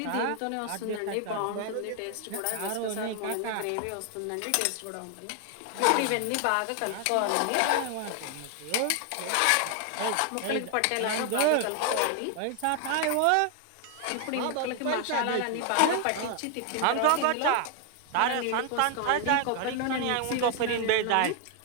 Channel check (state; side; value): different; both; correlation 0.00